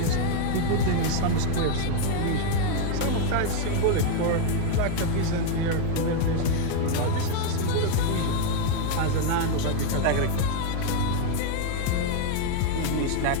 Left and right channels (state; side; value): different; both; correlation 0.00